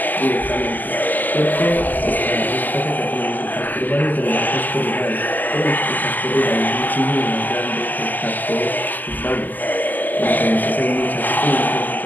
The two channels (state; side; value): late; right; 0.085 ms